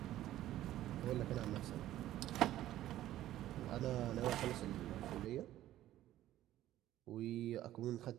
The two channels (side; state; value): left; quieter; 13.7 dB